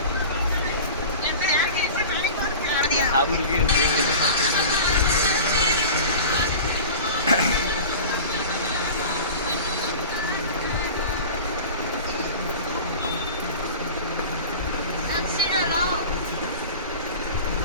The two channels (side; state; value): both; inverted; correlation -0.36